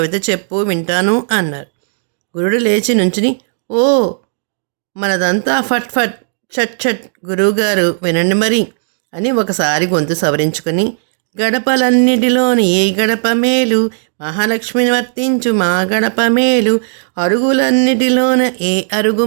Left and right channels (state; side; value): silent; left; digital silence